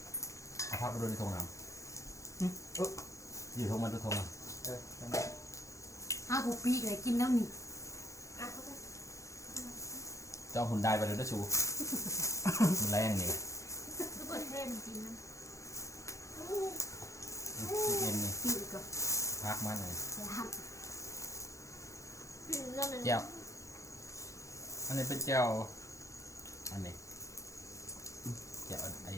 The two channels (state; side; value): late; right; 0.15 ms